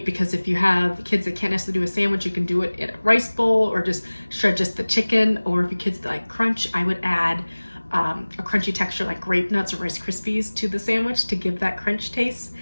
because if you have kids that can't necessarily do a sandwich, you can do it in a rice bowl or just shred just the chicken. Or if your kids like crunch, I would add a crunchy texture like grape nuts or Rice Krispies to the sandwich to give that crunch taste.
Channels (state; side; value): inverted; both; correlation -1.00